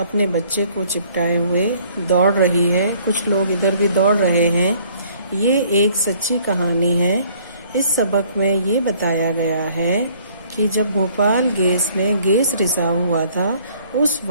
बच्चे को चिपटाए हुए दौड़ रही है। कुछ लोग इधर भी दौड़ रहे हैं। ये एक सच्ची कहानी है। इस सबक में ये बताया गया है कि जब भोपाल गैस में गैस रिसाव हुआ था उस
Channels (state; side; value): inverted; both; correlation -0.59